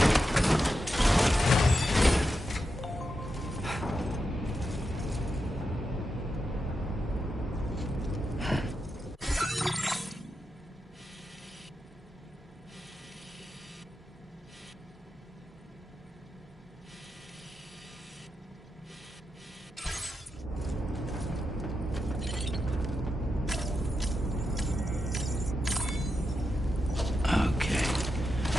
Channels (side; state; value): both; normal; correlation 0.87